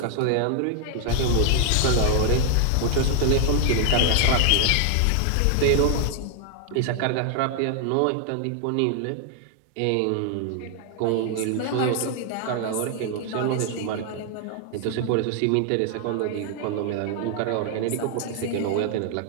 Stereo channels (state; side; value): different; both; correlation 0.00